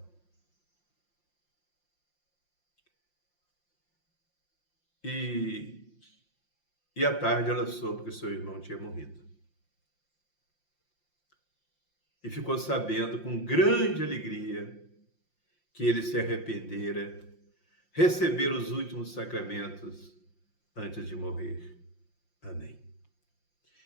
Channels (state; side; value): late; right; 5.7 ms